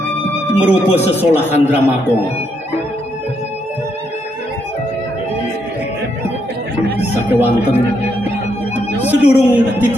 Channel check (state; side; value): normal; both; correlation 0.77